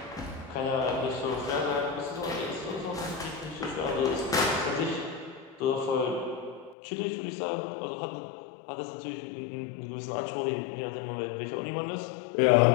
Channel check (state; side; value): drops out; right; at 6.8 s